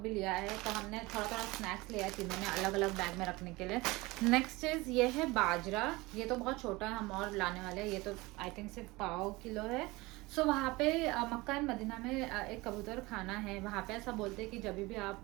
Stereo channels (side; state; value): left; quieter; 22.1 dB